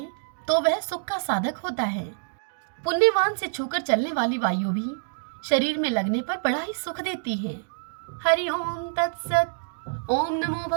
तो वह सुख का साधक होता है। पुण्यवान से छूकर चलने वाली वायु भी शरीर में लगने पर बड़ा ही सुख देती है। हरि ओम तत्सत। ओम नमो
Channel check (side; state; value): left; silent; digital silence